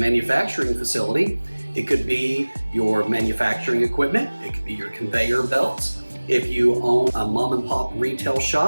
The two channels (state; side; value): inverted; both; correlation -1.00